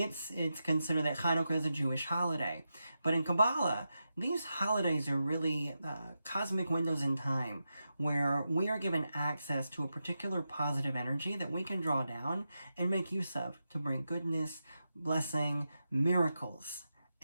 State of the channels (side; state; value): both; inverted; correlation -0.89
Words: it's considered that Hanukkah is a Jewish holiday. But in Kabbalah, these holidays are really cosmic windows in time where we are given access to a particular positive energy that we can draw down and make use of to bring goodness, blessing, miracles